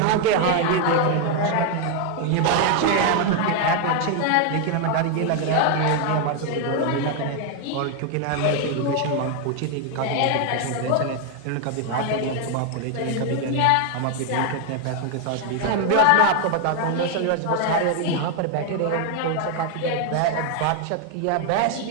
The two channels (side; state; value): both; different; correlation 0.01